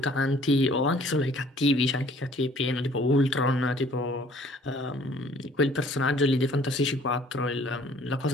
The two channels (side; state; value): both; normal; correlation 0.56